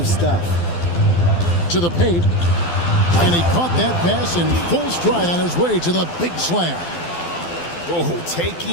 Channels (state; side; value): late; right; 12 ms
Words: stuff. To the paint. And he caught that pass in full stride on his way to the big slam. Oh,